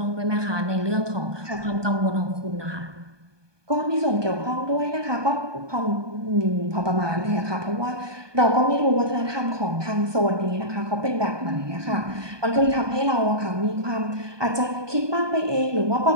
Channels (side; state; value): left; late; 1.2 ms